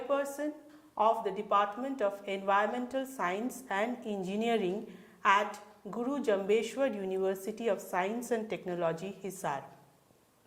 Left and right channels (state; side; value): identical; both; correlation 1.00